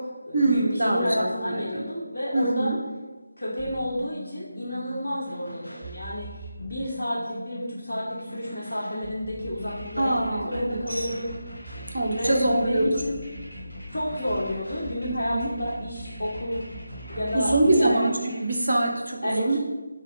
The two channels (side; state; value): both; inverted; correlation -0.88